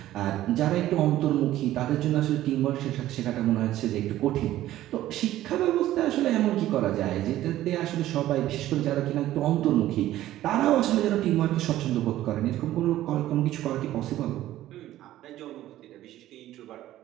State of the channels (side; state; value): left; quieter; 14.1 dB